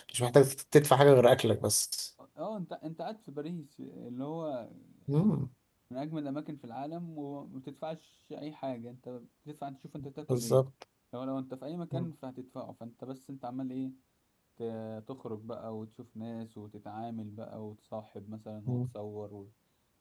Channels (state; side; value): identical; both; correlation 1.00